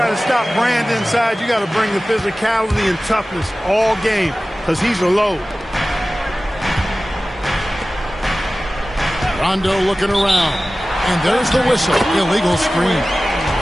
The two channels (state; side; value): normal; both; correlation 0.96